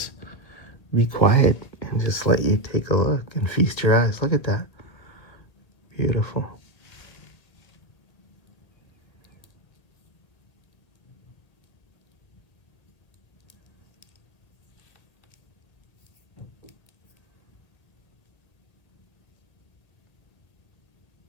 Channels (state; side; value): late; right; 1.7 ms